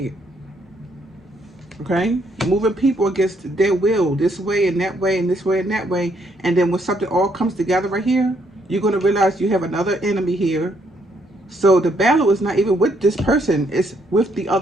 Okay, moving people against their will, this way and that way and this way and that way. And then when something all comes together right here, you're going to realize you have another enemy here. So the battle is not even with this person, it's with the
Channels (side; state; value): both; normal; correlation 0.72